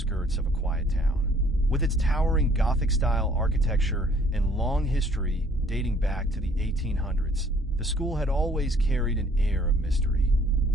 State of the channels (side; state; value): both; normal; correlation 0.59